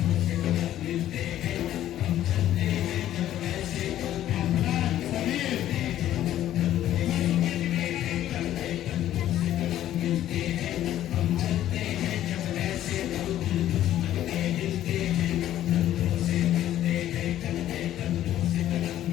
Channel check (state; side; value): quieter; right; 12.5 dB